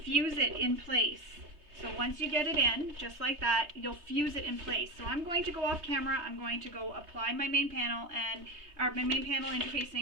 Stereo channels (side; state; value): left; late; 3.3 ms